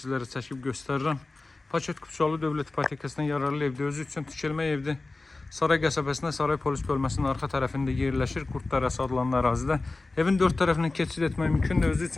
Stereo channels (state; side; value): quieter; right; 3.3 dB